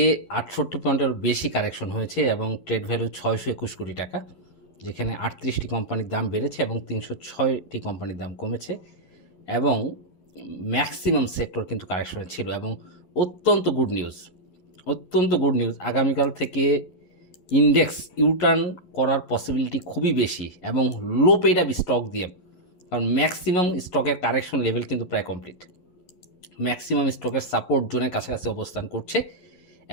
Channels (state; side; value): late; right; 11 ms